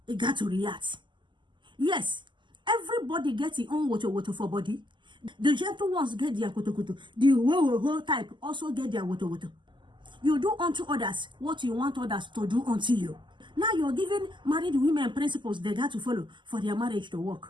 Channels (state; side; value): late; left; 0.23 ms